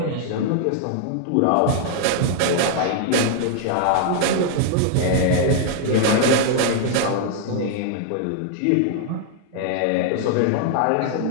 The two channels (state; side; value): different; both; correlation 0.00